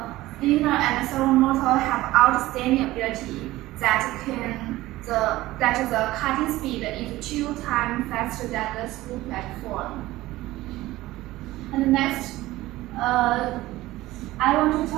linear and servo motor have outstanding ability that the cutting speed is 2 times faster than the screw platform. And next, I want to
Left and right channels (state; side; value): quieter; left; 17.3 dB